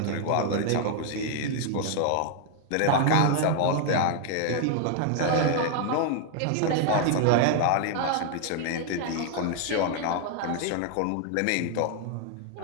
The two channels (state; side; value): different; both; correlation 0.00